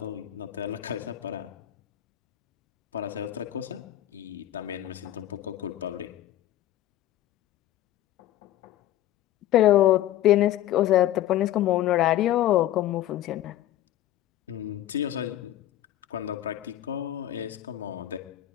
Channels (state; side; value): quieter; right; 13.2 dB